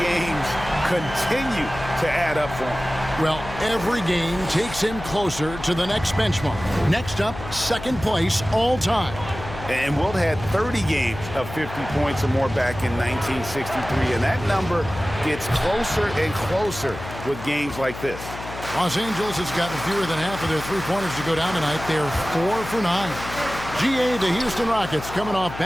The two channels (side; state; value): left; noise; hum, 11 dB below the sound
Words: games continue to add up for him. Well, every game takes him closer to the next benchmark. Next up, 2nd place all time. And Wilt had 30 games of 50 points or more back in 1963. And that number gets closer and closer with games like this. Los Angeles has gotten fewer than half of their three-pointers to go down tonight. They're 4 for 9. GA, the Houston Rockets, coming off